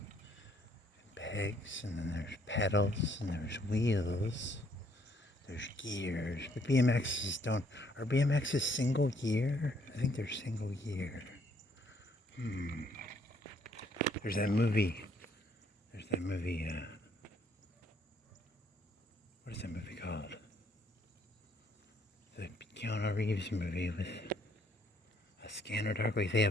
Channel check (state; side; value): normal; both; correlation 0.67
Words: Pegs, and then there's pedals, and there's wheels. There's gears. But BMXs don't. Are BMXs single gear? I think they're single gear. There's that movie. What is that movie called? The Keanu Reeves movie with a Scanner Darkly. They